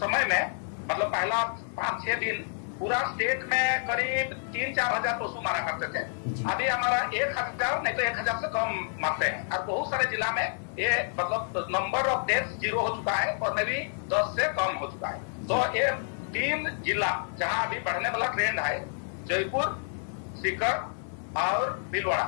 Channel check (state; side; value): silent; right; digital silence